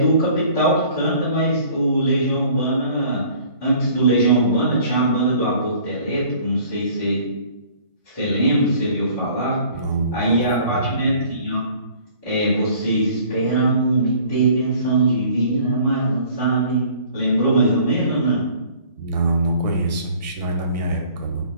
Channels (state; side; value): inverted; both; correlation -0.53